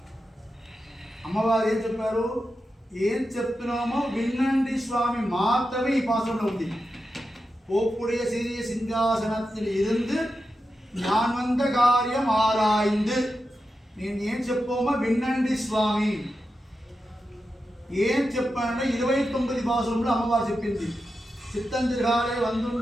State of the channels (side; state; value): both; normal; correlation 0.89